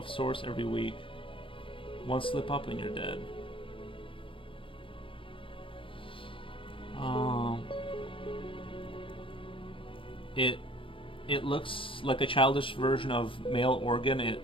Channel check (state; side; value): late; right; 0.25 ms